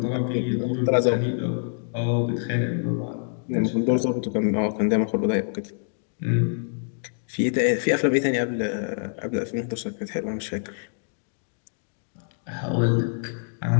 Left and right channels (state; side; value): silent; right; digital silence